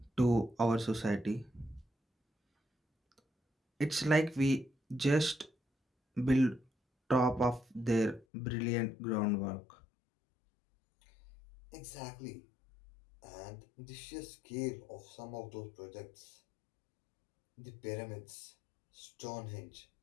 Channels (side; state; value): right; drops out; at 8.2 s